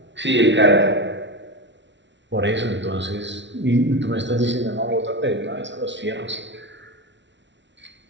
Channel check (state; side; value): late; left; 0.53 ms